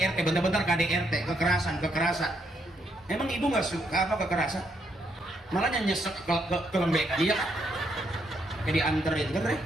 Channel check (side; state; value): both; normal; correlation 0.76